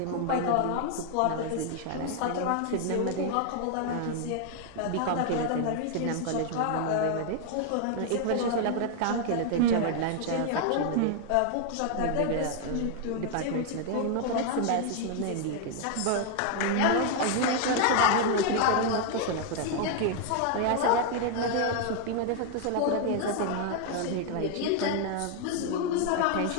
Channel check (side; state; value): both; different; correlation 0.00